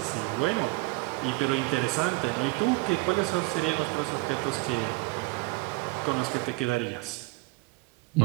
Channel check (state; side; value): quieter; left; 25.9 dB